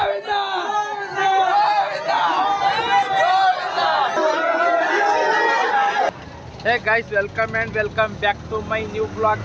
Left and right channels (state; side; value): identical; both; correlation 1.00